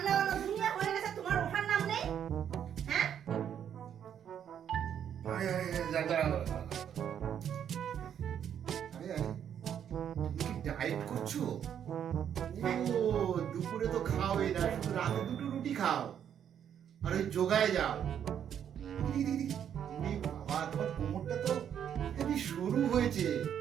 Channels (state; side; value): quieter; left; 9.1 dB